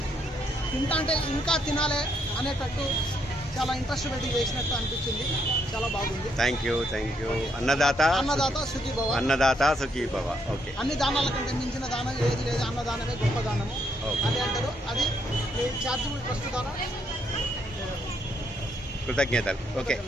తింటా అంటే ఇంకా తినాలి అనేటట్టు చాలా ఇంట్రెస్ట్ పెట్టి చేసినట్టు అనిపించింది. చాలా బాగుంది. Thank you thank you. Annadata Sukhibhava. Annadata Sukhibhava. Okay. అన్ని దానాల కంటే మించిన దానం ఏది లేదు. అన్నదానమే గొప్ప దానము అని అంటారు. అది చారిటబుల్ ట్రస్ట్ ద్వారా కృతజ్ఞతలు. Okay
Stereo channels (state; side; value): normal; both; correlation 0.75